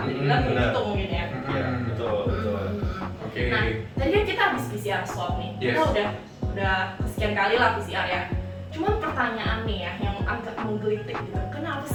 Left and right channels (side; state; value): both; identical; correlation 1.00